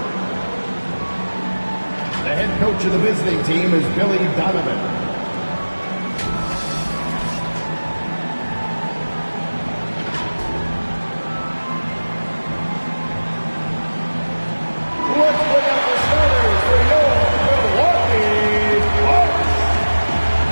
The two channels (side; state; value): both; inverted; correlation -1.00